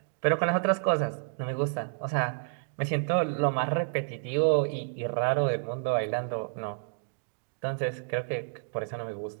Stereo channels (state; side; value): silent; left; digital silence